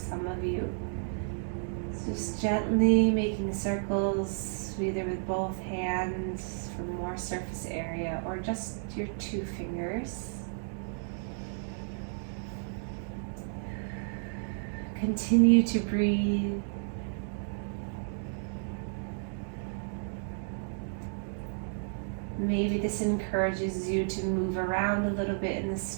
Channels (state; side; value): silent; left; digital silence